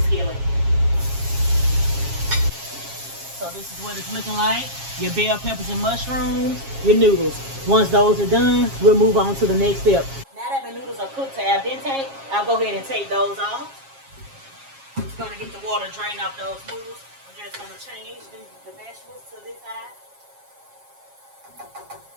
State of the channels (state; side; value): late; left; 7.4 ms